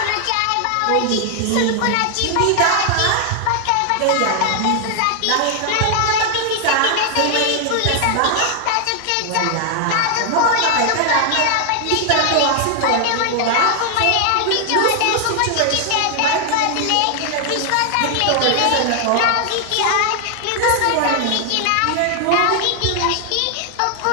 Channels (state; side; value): different; both; correlation 0.00